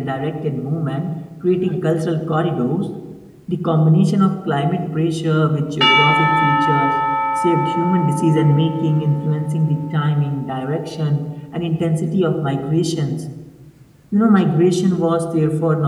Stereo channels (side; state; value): both; identical; correlation 1.00